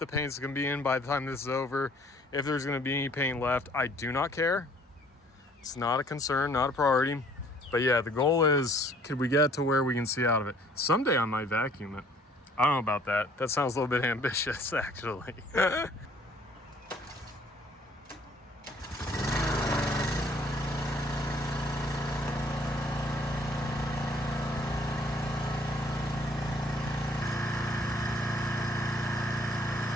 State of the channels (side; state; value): both; normal; correlation 0.59